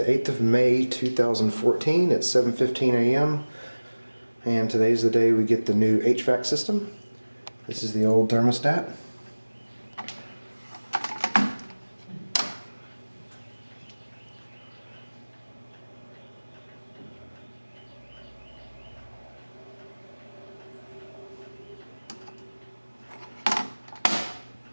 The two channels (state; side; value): inverted; both; correlation -1.00